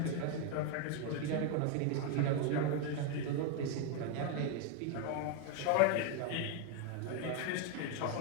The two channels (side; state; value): both; different; correlation 0.01